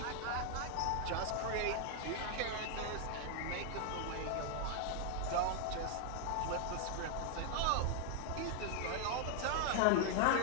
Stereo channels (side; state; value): both; different; correlation 0.00